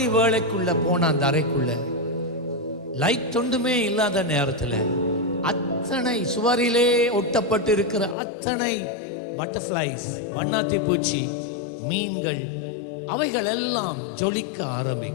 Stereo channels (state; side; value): drops out; right; at 8.2 s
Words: வேளைக்குள்ள போன அந்த அறைக்குள்ள லைட் ஒன்றுமே இல்லாத நேரத்தில் அத்தனை சுவரிலே ஒட்டப்பட்டு இருக்கிற அத்தனை பட்டர்ஃப்ளைஸ், வண்ணாத்தி பூச்சி, மீன்கள், அவைகள் எல்லாம் ஜொலிக்க